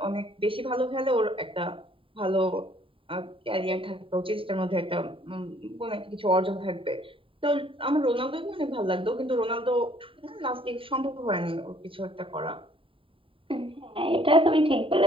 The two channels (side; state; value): left; late; 0.25 ms